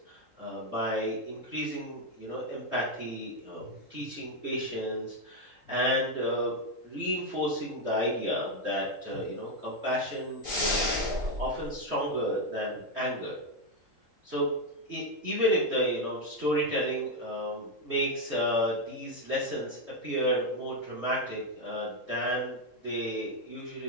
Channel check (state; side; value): late; left; 3.8 ms